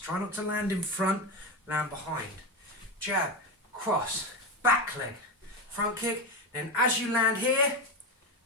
not to land in front, land behind. Jab, cross, back leg, front kick. Then as you land here,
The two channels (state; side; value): normal; both; correlation 0.16